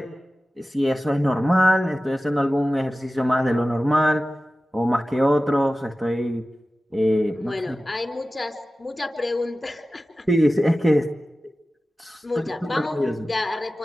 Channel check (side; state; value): both; normal; correlation 0.95